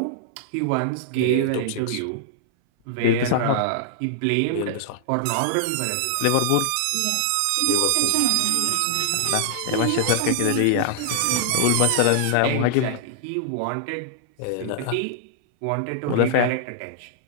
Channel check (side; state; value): both; different; correlation -0.01